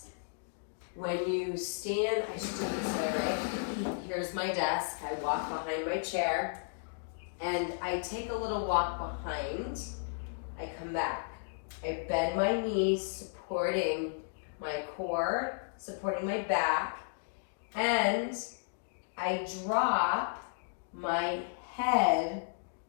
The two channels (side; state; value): right; silent; digital silence